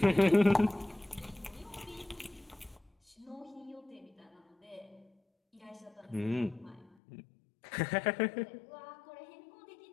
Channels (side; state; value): right; drops out; at 7.0 s